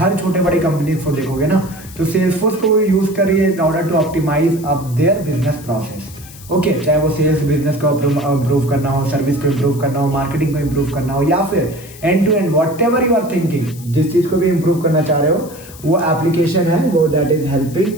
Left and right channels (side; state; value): left; noise; hiss, 19 dB below the sound